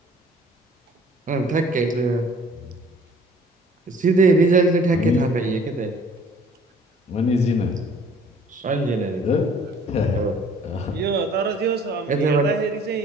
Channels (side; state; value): both; normal; correlation 0.54